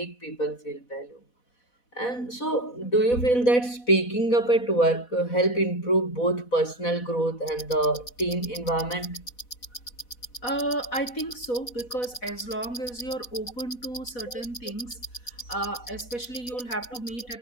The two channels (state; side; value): late; right; 4.1 ms